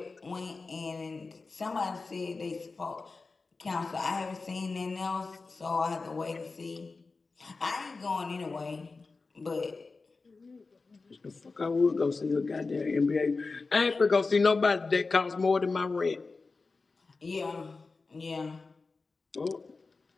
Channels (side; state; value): right; quieter; 4.0 dB